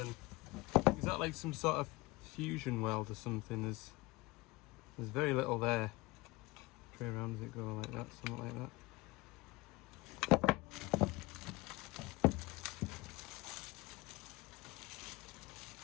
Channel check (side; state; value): right; quieter; 21.6 dB